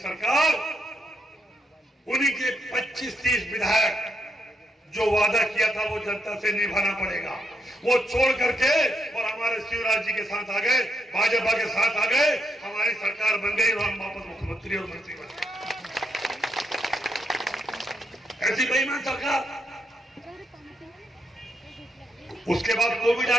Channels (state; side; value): normal; both; correlation 0.79